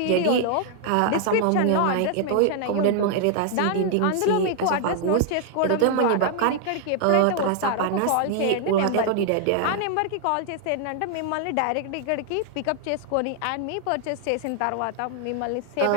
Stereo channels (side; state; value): both; different; correlation 0.00